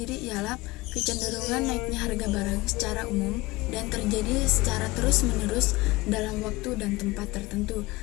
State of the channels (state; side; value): quieter; right; 20.8 dB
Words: ialah kecenderungan naiknya harga barang secara umum dan terjadi secara terus-menerus dalam waktu dan tempat tertentu.